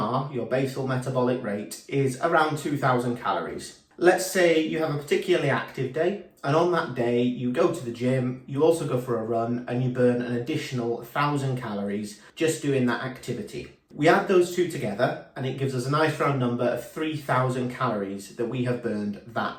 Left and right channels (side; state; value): both; identical; correlation 1.00